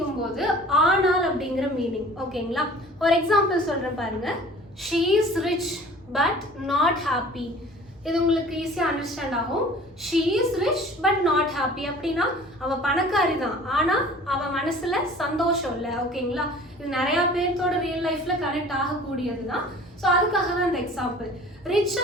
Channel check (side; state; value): both; normal; correlation 0.46